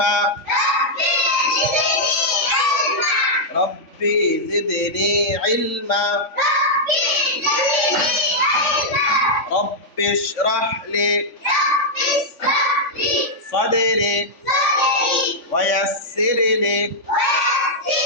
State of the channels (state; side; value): late; right; 3.5 ms